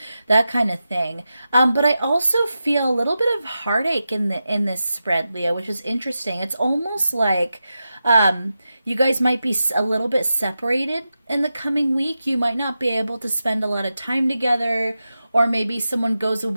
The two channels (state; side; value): inverted; both; correlation -0.91